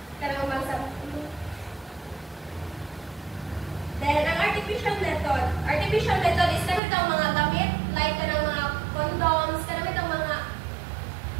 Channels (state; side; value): drops out; left; at 6.8 s